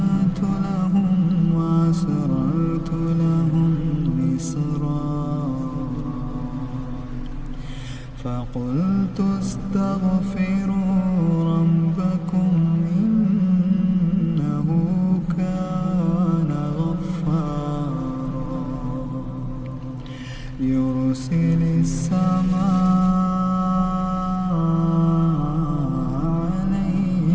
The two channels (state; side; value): identical; both; correlation 1.00